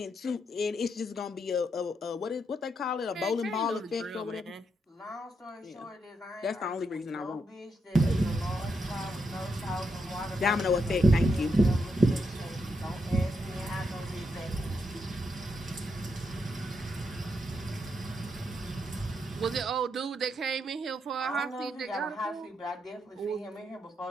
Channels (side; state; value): both; normal; correlation 0.81